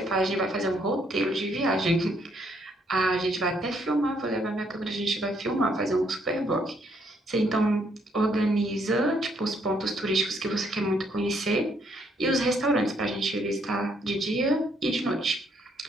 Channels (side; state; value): both; normal; correlation 0.70